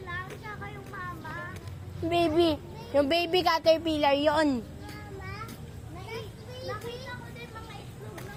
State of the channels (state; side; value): identical; both; correlation 1.00